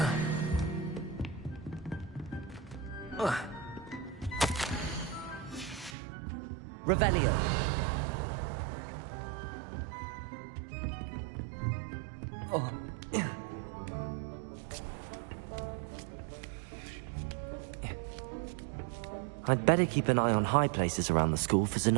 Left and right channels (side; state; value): left; drops out; at 6.0 s